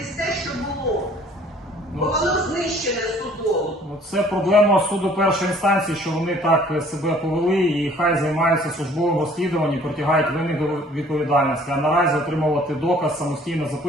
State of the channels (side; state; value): both; normal; correlation 0.55